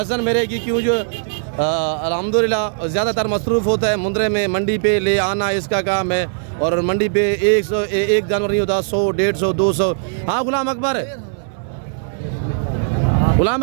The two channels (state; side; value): silent; left; 67 dB below the other